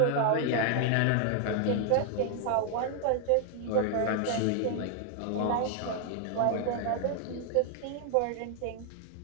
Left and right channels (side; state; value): both; different; correlation 0.00